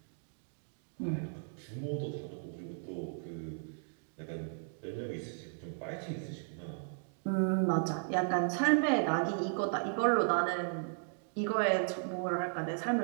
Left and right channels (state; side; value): silent; left; digital silence